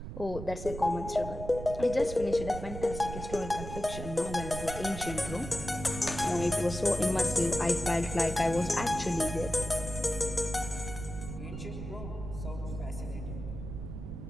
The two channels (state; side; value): noise; right; rumble, 8 dB below the sound